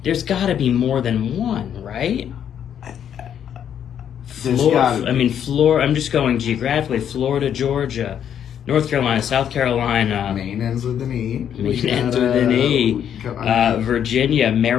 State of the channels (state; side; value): quieter; right; 9.2 dB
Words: There's got to be more than one, right? There's gotta be. I mean, Florida. I'm just going geographically. Florida, Georgia, North Carolina, South Carolina. Maine ends with an E. Maine ends with an E. I mean, Virginia,